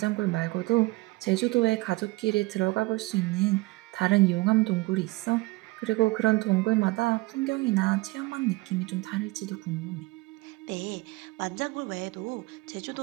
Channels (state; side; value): quieter; left; 21.8 dB